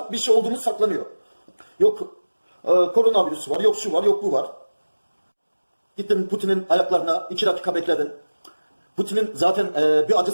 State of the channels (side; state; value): both; inverted; correlation -1.00